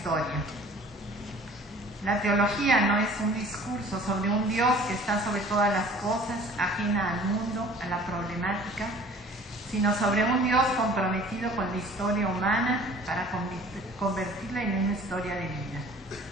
La teología no es un discurso sobre un Dios que está sobre todas las cosas, ajena al mundo, a la problemática, sino sobre un Dios comprometido con la historia humana para convertirla en una historia de vida.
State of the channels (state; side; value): normal; both; correlation 0.49